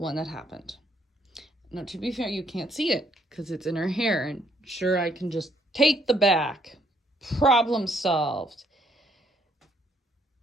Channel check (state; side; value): normal; both; correlation 0.69